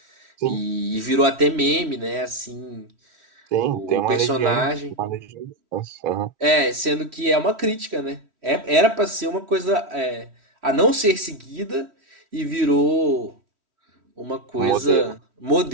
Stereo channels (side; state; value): left; late; 3.1 ms